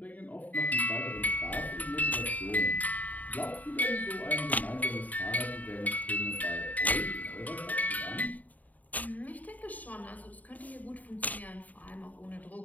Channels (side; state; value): right; late; 0.077 ms